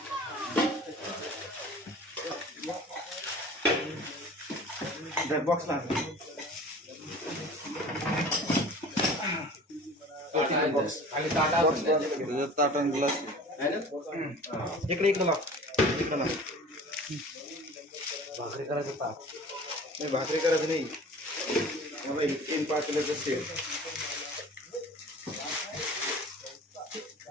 बॉक्सला ताटण ग्लास इकडे इकडे लाव इकडे लाव भाकरी करायचं ताट नाही भाकरी करायचं नाही मला 3-5 किलोचं सेल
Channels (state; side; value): normal; both; correlation 0.42